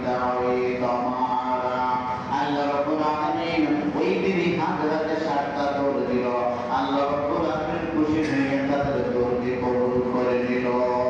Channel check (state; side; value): identical; both; correlation 1.00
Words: ওয়া তামারা। আল্লাহ রাব্বুল আলামিন ওই বিবি হাজরাকে 7টা দৌড় দিল। আল্লাহ রাব্বুল আলামিন খুশি হয়ে তাদের দৌড়কে কবুল করে নিল।